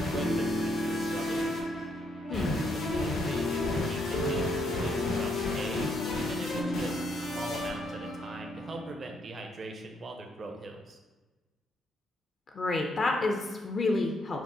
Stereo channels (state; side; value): normal; both; correlation 0.74